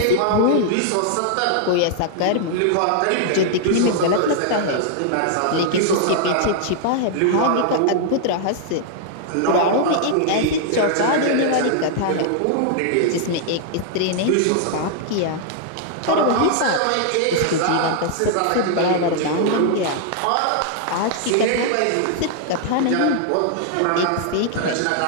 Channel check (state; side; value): different; both; correlation 0.00